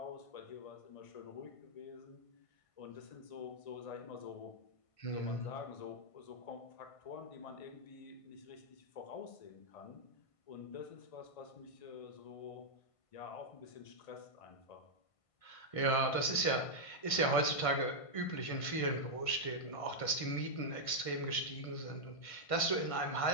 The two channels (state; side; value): late; right; 1.5 ms